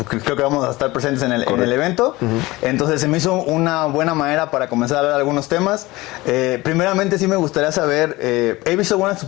creo que vamos a estar presentes en el evento, entonces se me hizo una buena manera para comenzar a hablar de algunos temas. Primeramente sí me gustaría saber, he visto algunas de tus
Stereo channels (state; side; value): quieter; right; 20.3 dB